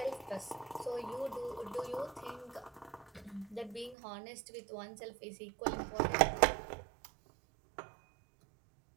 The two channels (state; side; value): drops out; left; at 4.0 s